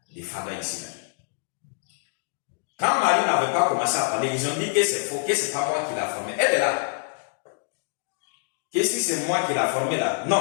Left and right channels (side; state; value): right; silent; 61 dB below the other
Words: des Fada ici. Quand Marie n'avait pas commencé à parler, ils ont dit que c'est faux, que c'est pas moi qui l'ai formé. Elle est là. Que si c'est moi qui l'ai formé là,